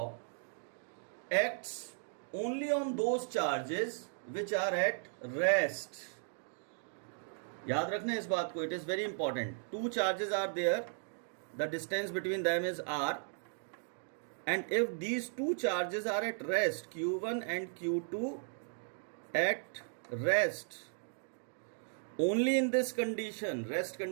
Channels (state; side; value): silent; left; digital silence